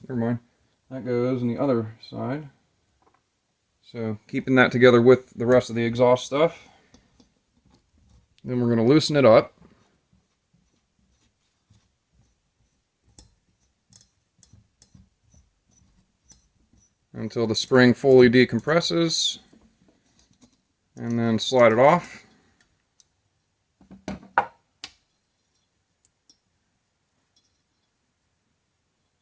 Never mind. That goes on the other side. So keeping that together with the rest of the exhaust stuff. Then we're going to loosen it up. Until the spring fully decompresses. And then slide it off.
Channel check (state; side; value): identical; both; correlation 1.00